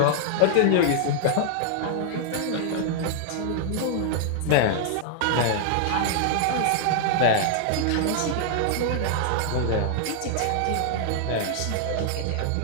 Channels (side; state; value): both; different; correlation -0.01